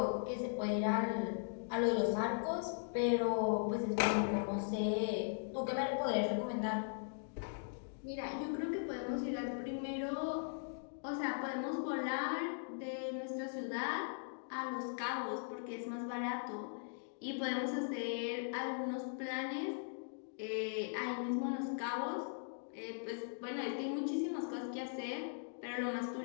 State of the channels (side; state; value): right; silent; digital silence